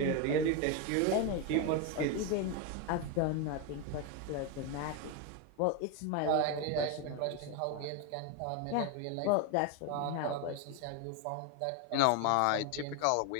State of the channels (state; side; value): different; both; correlation 0.02